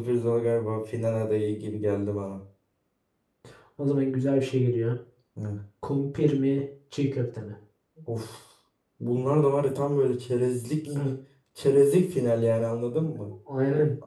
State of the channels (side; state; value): both; identical; correlation 1.00